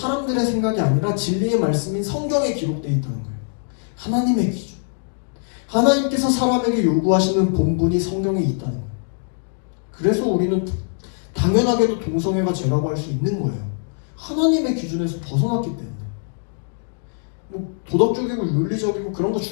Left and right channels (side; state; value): right; silent; digital silence